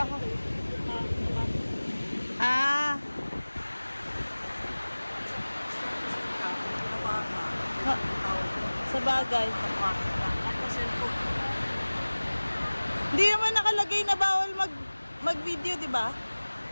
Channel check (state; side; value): inverted; both; correlation -1.00